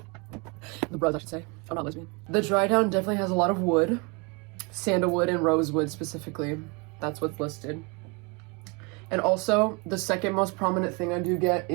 The bros, I should say. I'm not lesbian. The dry down definitely has a lot of wood. Sandalwood and rosewood specifically. That's what's listed. And also, the second most prominent thing I do get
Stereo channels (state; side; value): quieter; left; 30.3 dB